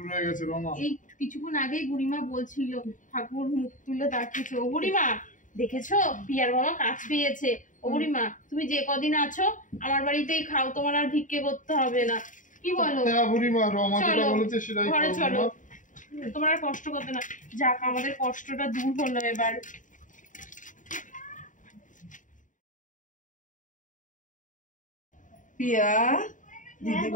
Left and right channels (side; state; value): right; late; 0.37 ms